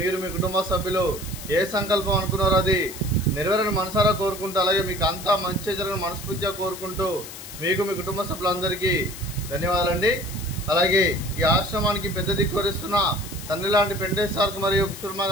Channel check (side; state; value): left; noise; hiss, 13 dB below the sound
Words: మీ కుటుంబ సభ్యులు ఏ సంకల్పం అనుకున్నారో అది నెరవేరని మనసారా కోరుకుంటూ అలాగే మీకు అంతా మంచి జరగని మనస్ఫూర్తిగా కోరుకుంటూ మీకు మీ కుటుంబ సభ్యులందరికీ ధన్యవాదాలండి. అలాగే ఈ ఆశ్రమానికి పెద్ద దిక్కు వరిస్తున్న తండ్రి లాంటి పెండేశ్వర్ మరియు కుశుర్మ